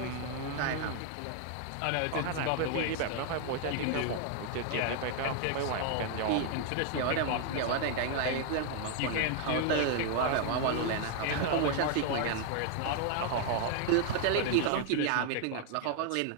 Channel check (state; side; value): different; both; correlation 0.00